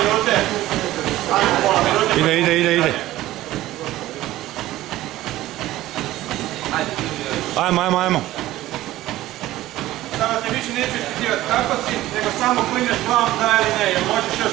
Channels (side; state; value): left; quieter; 15.7 dB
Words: Ajmo pola minute. Ide. Ajmo. Sada te više neću ispitivati kako si, nego samo klineš glavom da ili ne, jer možeš još